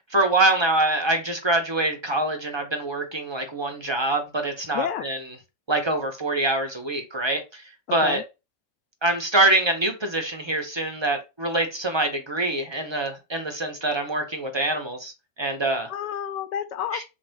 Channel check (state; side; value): late; left; 1.3 ms